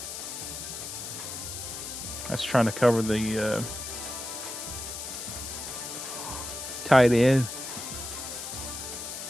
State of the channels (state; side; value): noise; left; hiss, 7 dB below the sound